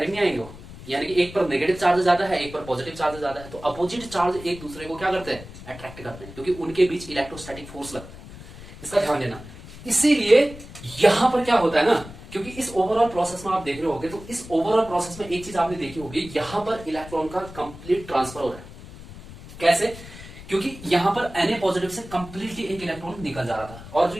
नहीं आएंगे वो, यानी कि एक पर नेगेटिव चार्ज ज्यादा है, एक पर पॉजिटिव चार्ज ज्यादा है, तो अपोजिट चार्ज एक दूसरे को क्या करते हैं? अट्रैक्ट करते हैं, क्योंकि उनके बीच इलेक्ट्रोस्टैटिक फोर्स लगता है, इसका ध्यान देना। इसीलिए यहां पर क्या होता है ना, क्योंकि इस ओवरऑल प्रोसेस में आप देख रहे होगे, तो इस ओवरऑल प्रोसेस में एक चीज आपने देखी होगी, यहां पर इलेक्ट्रॉन का कंप्लीट ट्रांसफर हो रहा है। कैसे? क्योंकि यहां पर Na पॉजिटिव से कंप्लीटली एक इलेक्ट्रॉन निकल जा रहा था, और जो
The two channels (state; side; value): noise; left; rumble, 16 dB below the sound